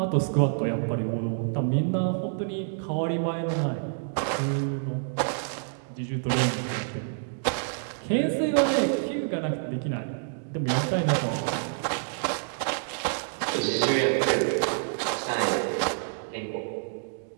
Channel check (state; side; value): silent; left; digital silence